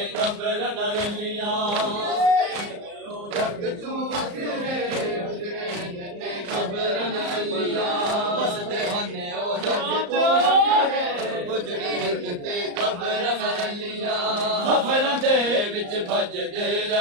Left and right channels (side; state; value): left; late; 34 ms